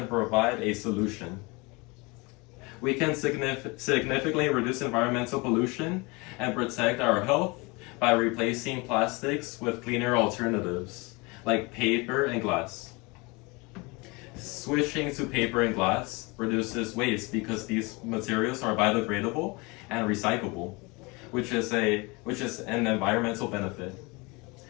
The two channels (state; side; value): quieter; right; 26.4 dB